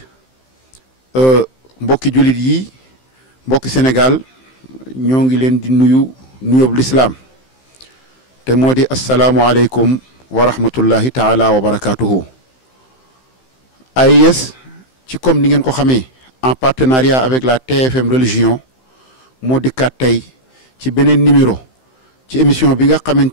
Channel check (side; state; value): right; late; 15 ms